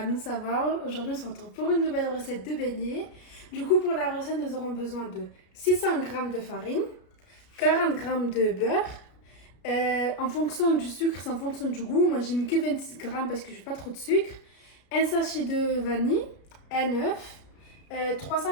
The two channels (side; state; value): right; late; 33 ms